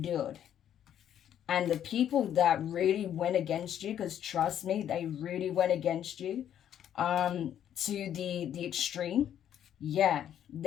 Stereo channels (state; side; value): quieter; right; 10.2 dB